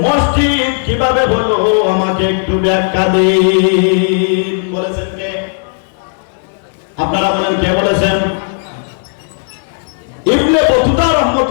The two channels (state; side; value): silent; right; digital silence